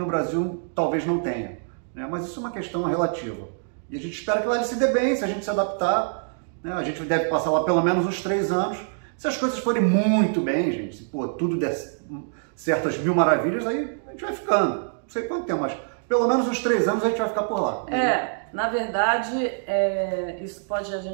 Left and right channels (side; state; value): left; silent; digital silence